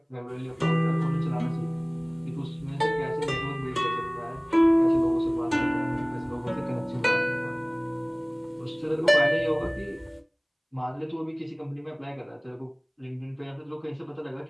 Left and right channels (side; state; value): both; identical; correlation 1.00